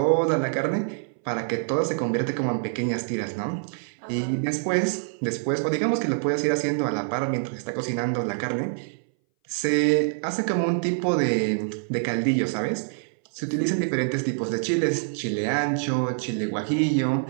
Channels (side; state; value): left; silent; 60 dB below the other